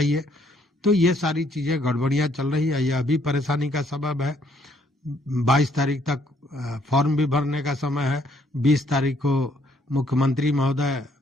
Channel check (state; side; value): normal; both; correlation 0.67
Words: तो ये सारी चीजें गड़बड़ियां चल रही है, यह भी परेशानी का सबब है। 22 तारीख तक फॉर्म भी भरने का समय है। 20 तारीख को मुख्यमंत्री महोदय